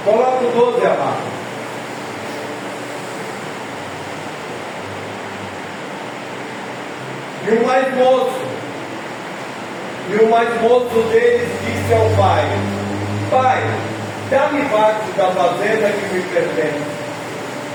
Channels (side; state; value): both; identical; correlation 1.00